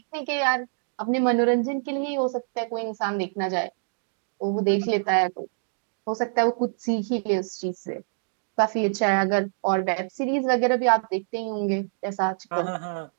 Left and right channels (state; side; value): silent; left; digital silence